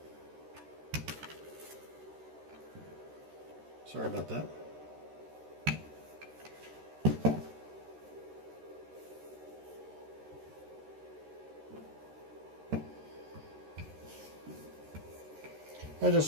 Sorry about that. I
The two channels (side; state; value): left; late; 13 ms